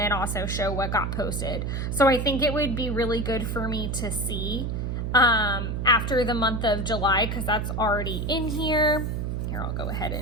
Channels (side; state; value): right; noise; hum, 2 dB below the sound